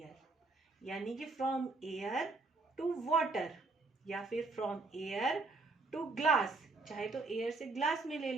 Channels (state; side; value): quieter; left; 3.6 dB